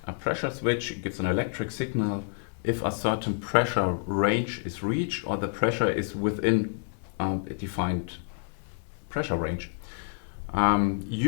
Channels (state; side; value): silent; right; digital silence